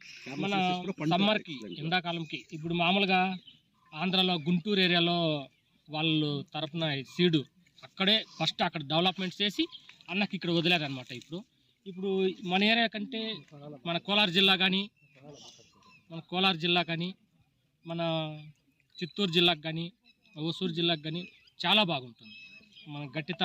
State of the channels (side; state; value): both; identical; correlation 1.00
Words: మన సమ్మర్కి, ఎండాకాలంకి. ఇప్పుడు మామూలుగా ఆంధ్రాలో గుంటూరు ఏరియాలో వాళ్ళు తరపున సీడు అక్కడే ఫస్ట్ అక్కడ డెవలప్మెంట్ చేసి అన్నకి ఇక్కడ వదిలేరనమాట. ఇప్పుడు మన ఏరియా కంటే మన కోలార్ జిల్లా కానీ మన చిత్తూరు జిల్లాకు కానీ ఓసూరు జిల్లాకు కానీ చాలా బాగుంటుంది. మన